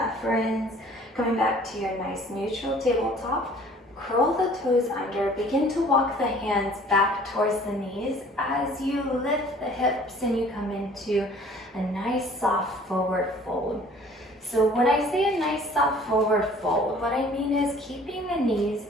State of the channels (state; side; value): normal; both; correlation 0.52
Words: friends. Coming back to your nice neutral tabletop. Curl the toes under, begin to walk the hands back towards the knees as you lift the hips and you come into a nice soft forward fold. So when I say a nice soft forward fold, what I mean is keeping the knees